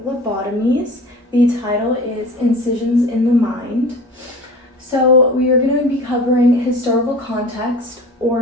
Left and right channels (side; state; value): both; normal; correlation 0.39